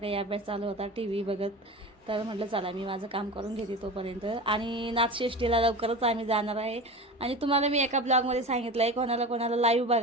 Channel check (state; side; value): normal; both; correlation 0.31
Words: अभ्यास चालू होता टी व्ही बघत. तर म्हटलं चला मी माझं काम करून घेते तोपर्यंत. आणि नाथषष्टीला लवकरच आम्ही जाणार आहे. आणि तुम्हाला मी एका ब्लॉगमध्ये सांगितलं आहे कोणाला कोणाला लाईव्ह